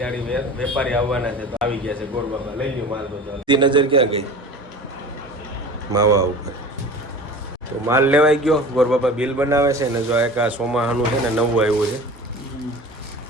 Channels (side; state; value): both; normal; correlation 0.38